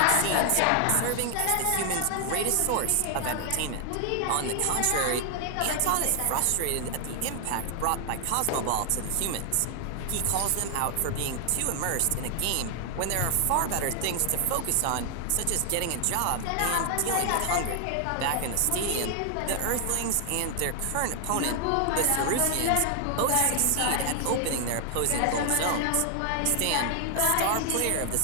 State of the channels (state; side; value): different; both; correlation 0.00